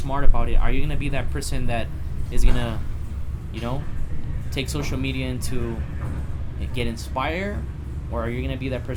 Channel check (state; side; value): identical; both; correlation 1.00